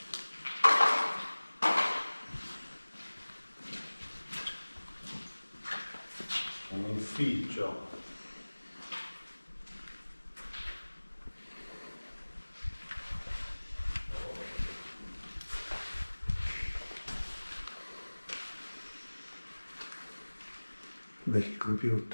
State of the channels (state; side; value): inverted; both; correlation -1.00